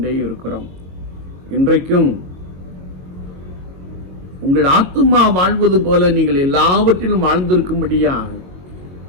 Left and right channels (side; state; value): left; late; 22 ms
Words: இருக்கிறோம். இன்றைக்கும் உங்கள் ஆத்துமா வாழ்வது போல நீங்கள் எல்லாவற்றிலும் வாழ்ந்திருக்கும்படியாக